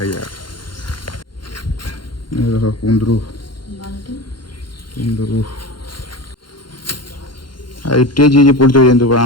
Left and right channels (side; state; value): right; late; 0.72 ms